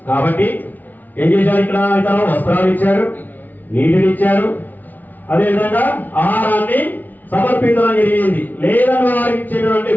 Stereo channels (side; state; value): right; late; 0.081 ms